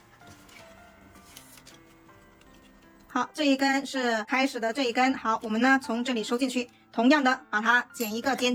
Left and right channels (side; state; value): both; identical; correlation 1.00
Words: 好，这一根是开始的这一根。好，我们呢从这里收进去，同样的把它剪一个